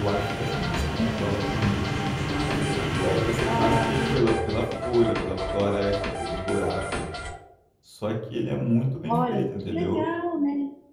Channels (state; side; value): identical; both; correlation 1.00